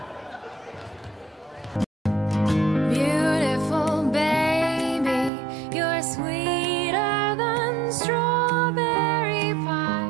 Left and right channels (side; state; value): left; drops out; at 5.3 s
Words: Beautiful baby, you're sweeter than strawberry